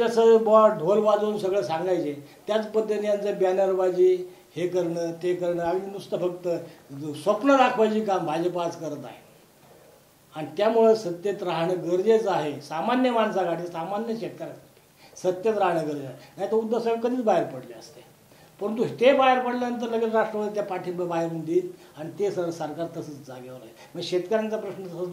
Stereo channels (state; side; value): identical; both; correlation 1.00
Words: ढोल वाजवून सगळं सांगायचे त्याच पद्धतीने यांचं बॅनरबाजी हे करणं ते करणं आणि नुसतं फक्त स्वप्न दाखवायची काम भाजप आज करत आहे. आणि त्यामुळं सत्तेत राहणं गरजेचं आहे. सामान्य माणसासाठी, सामान्य शेतकऱ्यासाठी सत्तेत राहणं गरजेचं आहे. नाही तर उद्धव साहेब कधीच बाहेर पडले असते. परंतु ते बाहेर पडल्यानंतर लगेच राष्ट्रवादी त्या पाठिंबा बाहेरून देईल आणि ते सरकार तसंच जागेवर आहे. मग शेतकऱ्यांचा प्रश्न तसंच